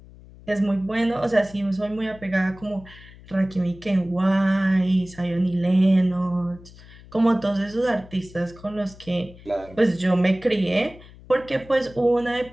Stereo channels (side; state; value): left; noise; hum, 21 dB below the sound